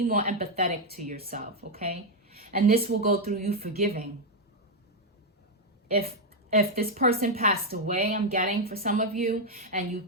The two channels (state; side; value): normal; both; correlation 0.02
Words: more empathetic to yourself, okay? And this will go through you forgiving. If this person passed away, I'm getting for some of you, and